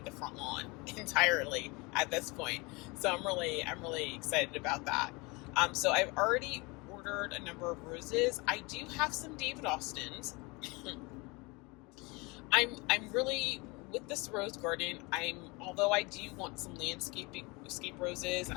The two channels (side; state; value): right; quieter; 26.5 dB